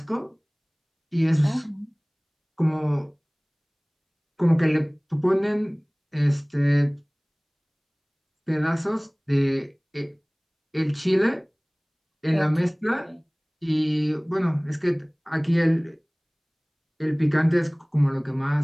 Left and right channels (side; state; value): both; identical; correlation 1.00